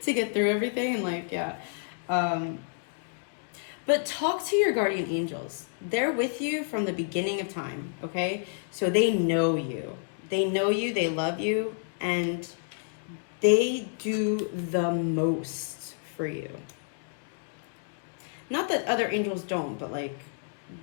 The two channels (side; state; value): right; silent; digital silence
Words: to get through everything. And like, yeah. But talk to your guardian angels. They're with you from the beginning of time, okay? So they know you. They know you, they love you, and they do the most for you. Not that other angels don't, but like,